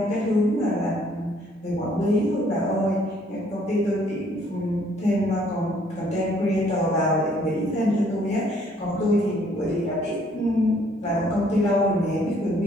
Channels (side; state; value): both; normal; correlation 0.63